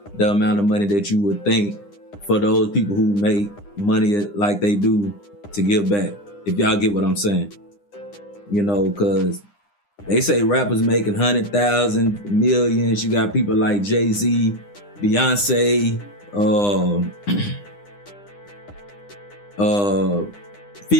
the amount of money that you would think for those people who make money like they do to give back. If y'all get what I'm saying. Because they say rappers making 100,000, millions. You got people like Jay-Z, Beyonce,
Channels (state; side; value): late; right; 9.9 ms